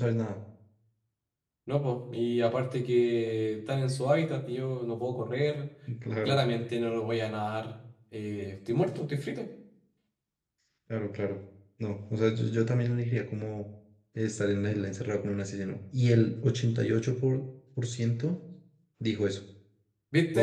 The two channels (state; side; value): identical; both; correlation 1.00